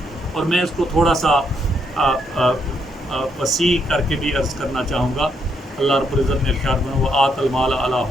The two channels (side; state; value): both; normal; correlation 0.76